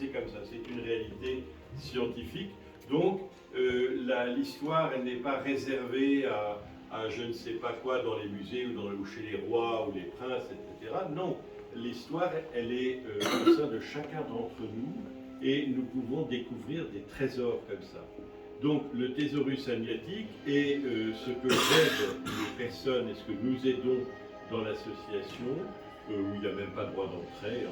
comme ça, c'est une réalité scientifique. Donc, l'histoire, elle n'est pas réservée à je ne sais pas quoi dans les musées ou chez les rois ou les princes, etc. Non, l'histoire, elle est au sein de chacun d'entre nous et nous pouvons découvrir des trésors comme ça. Donc, le thésaurus agnatique est ce que j'aide les personnes et ce que nous aidons dans l'association, où il n'y a même pas de droit d'entrée,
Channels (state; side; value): identical; both; correlation 1.00